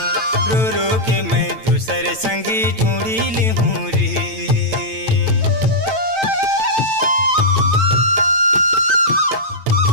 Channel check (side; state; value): left; late; 9.0 ms